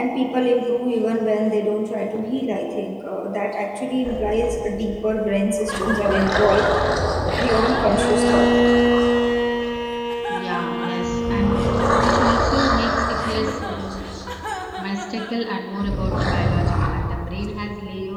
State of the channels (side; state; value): both; identical; correlation 1.00